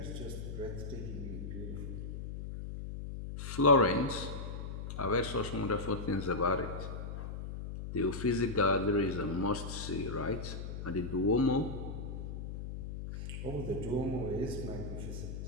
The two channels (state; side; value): noise; left; hum, 6 dB below the sound